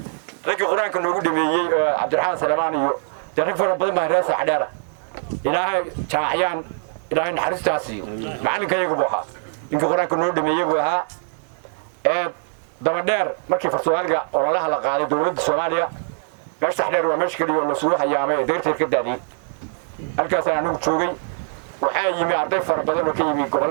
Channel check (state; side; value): silent; left; digital silence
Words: ragii quraanka noogu dhameeyay Cabdiraxmaan Salamaan iyo rag fara badan baa reer sax dheer ilaahay jaamacayaan ilaahay naxariistaasi macalinkayagu buu ahaa inka quraanka noo dhameeyay buu ahaa daba dheer markii Soomaaliga ololaha la qaaday dawladda Soomaaliya meesha sax dheer waa meesha kaliya oo la soo hayaamay deerteed ka daadiyay halkaas aan ugu joogay waxaa yimi arday fara badan oo ka yimi